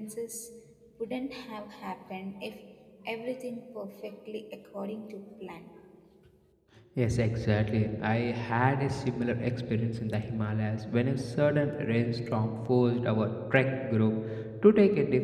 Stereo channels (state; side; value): identical; both; correlation 1.00